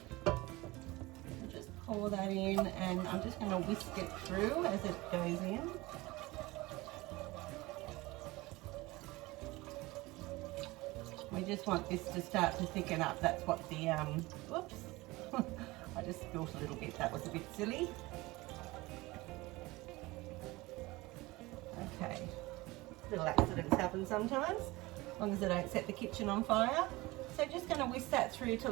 Just pour that in, and I'm just going to whisk it through as it goes in. We just want this to start to thicken up. That's what the, whoops, I just spilled a little bit, that was a bit silly. Okay, little accidents happen sometimes, as long as I don't set the kitchen on fire. So just going to whisk that through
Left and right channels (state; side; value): quieter; left; 21.1 dB